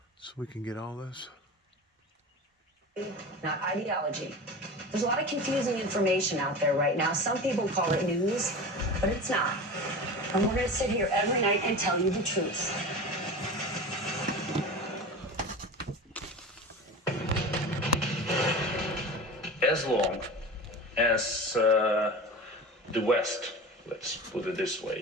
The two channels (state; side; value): normal; both; correlation 0.31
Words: so we can get all this. Not ideology. There's a lot of confusing information out there right now. Some people call it news, but it's not. And we're going to sit here every night and tell you the truth. As long as the West, let's put it this